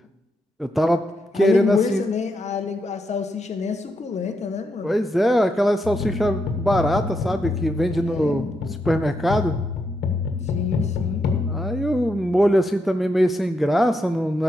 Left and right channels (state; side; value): normal; both; correlation 0.82